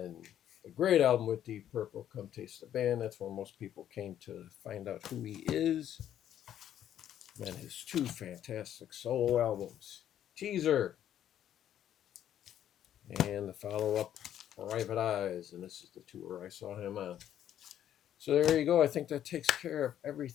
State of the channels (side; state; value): right; quieter; 10.8 dB